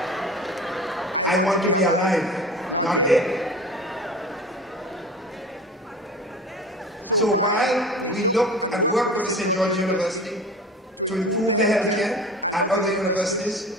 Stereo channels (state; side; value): normal; both; correlation 0.38